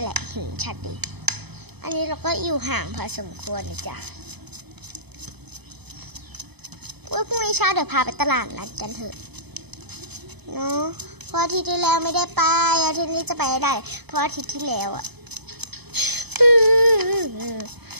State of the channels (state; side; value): late; left; 0.98 ms